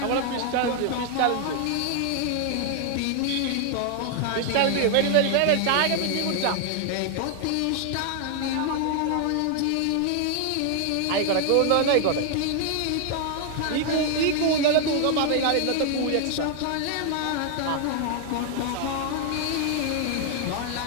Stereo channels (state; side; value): different; both; correlation 0.00